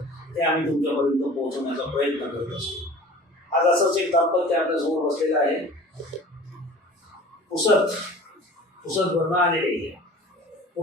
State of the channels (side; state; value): both; normal; correlation 0.43